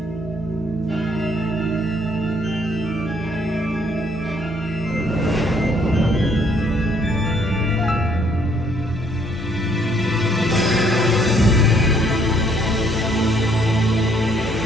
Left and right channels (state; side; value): normal; both; correlation 0.66